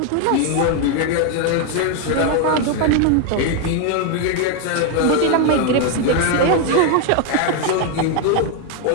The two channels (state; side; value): different; both; correlation 0.01